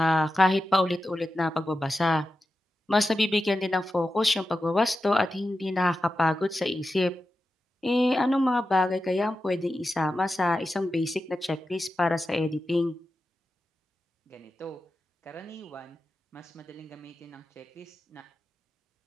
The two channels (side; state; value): both; normal; correlation 0.91